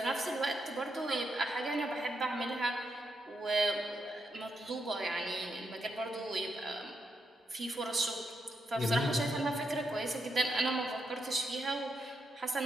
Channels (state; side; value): normal; both; correlation 0.82